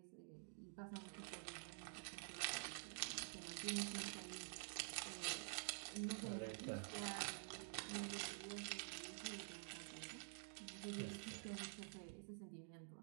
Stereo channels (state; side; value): silent; left; digital silence